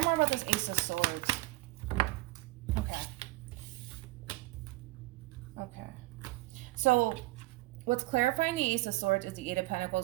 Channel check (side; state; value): left; quieter; 20.1 dB